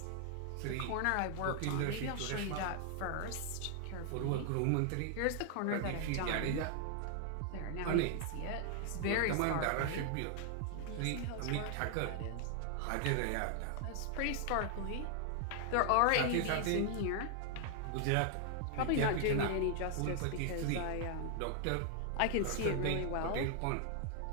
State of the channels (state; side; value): different; both; correlation 0.00